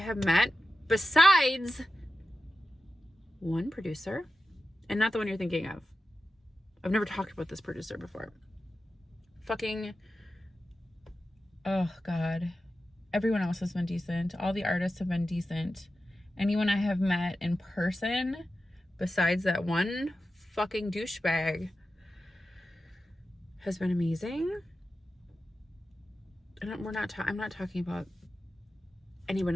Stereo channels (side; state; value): both; normal; correlation 0.92